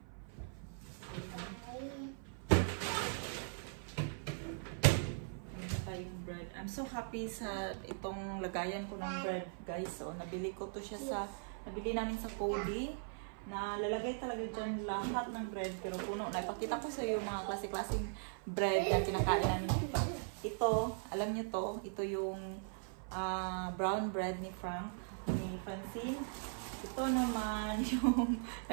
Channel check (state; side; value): silent; left; 51 dB below the other